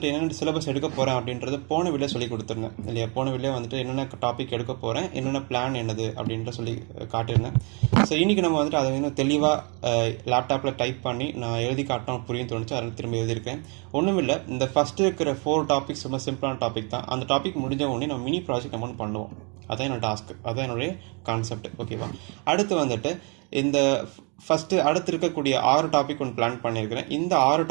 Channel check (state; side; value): quieter; left; 33.6 dB